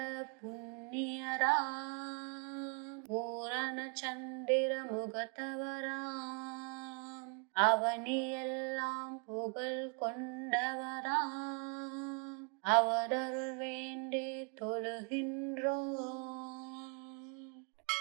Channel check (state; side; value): quieter; left; 34.9 dB